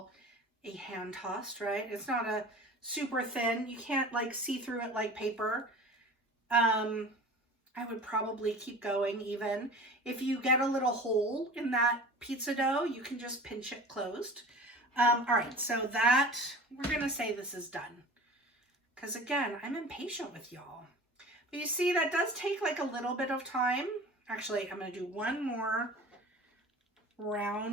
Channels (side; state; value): both; normal; correlation 0.39